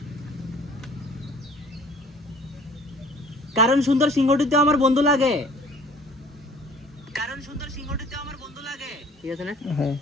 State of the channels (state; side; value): normal; both; correlation 0.52